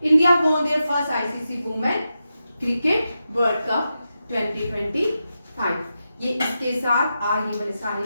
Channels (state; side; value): inverted; both; correlation -0.89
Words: India won their first ICC women cricket world cup 2025। ये इसके साथ आगे वाले सारे